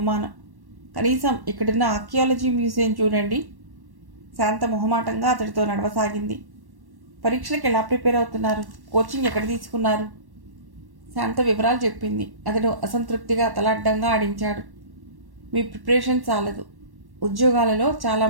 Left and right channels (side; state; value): left; late; 1.1 ms